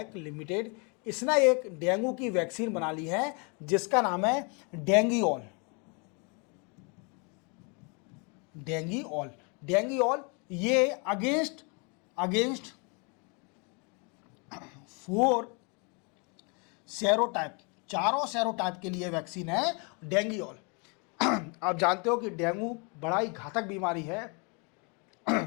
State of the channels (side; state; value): right; quieter; 33.9 dB